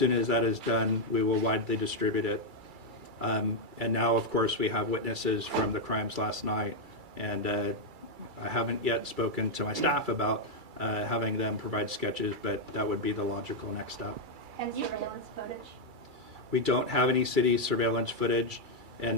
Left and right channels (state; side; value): late; left; 2.3 ms